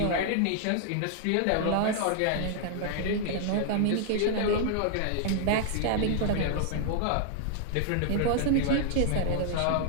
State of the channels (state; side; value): different; both; correlation 0.00